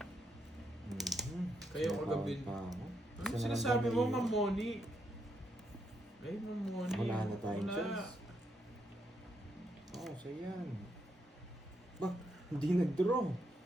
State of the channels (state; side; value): normal; both; correlation 0.79